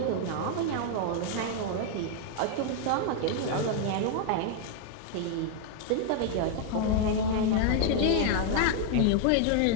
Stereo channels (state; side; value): different; both; correlation 0.00